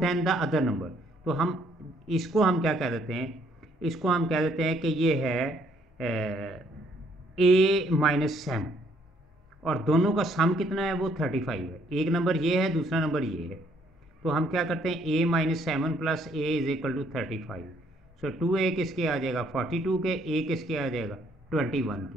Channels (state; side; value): normal; both; correlation 0.66